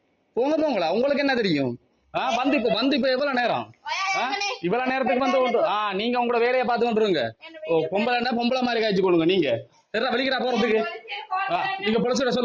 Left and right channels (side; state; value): both; identical; correlation 1.00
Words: போங்களா? உங்களுக்கு என்ன தெரியும்? வந்து இப்ப எவ்வளவு நேரம்? இவ்வளவு நேரத்துக்கு வந்து நீங்க உங்களோட வேலையை பார்த்து கொண்டுருங்க. பொம்பளை மாதிரி காய்ச்சி கொடுங்க. நீங்க வலிக்கிறா போறதுக்கு நீங்க பொலிசிட